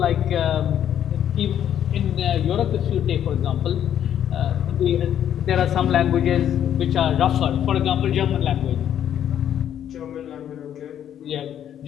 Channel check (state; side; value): quieter; right; 10.1 dB